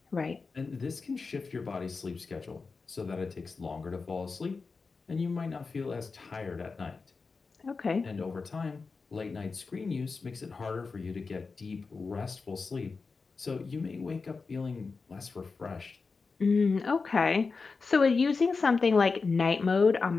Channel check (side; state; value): right; quieter; 4.5 dB